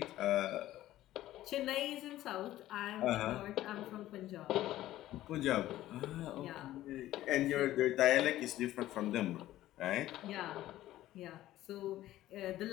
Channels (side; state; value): right; quieter; 14.5 dB